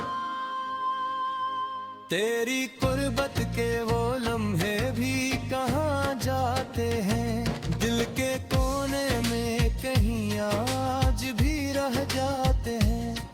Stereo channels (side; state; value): both; identical; correlation 1.00